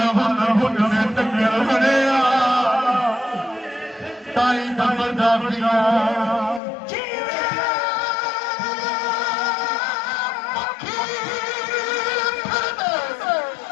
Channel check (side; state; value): right; drops out; at 6.6 s